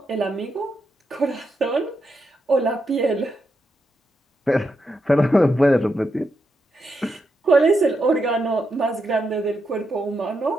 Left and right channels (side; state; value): both; normal; correlation 0.83